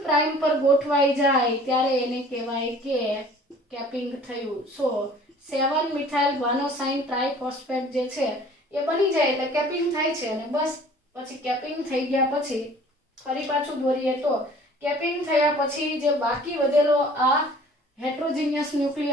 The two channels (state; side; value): normal; both; correlation 0.50